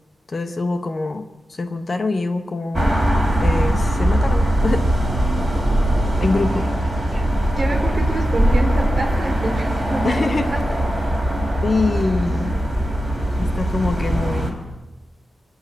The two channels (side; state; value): both; normal; correlation 0.91